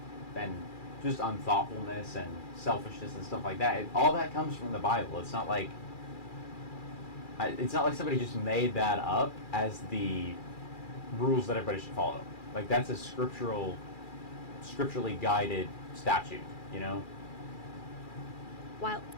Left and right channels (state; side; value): late; right; 2.4 ms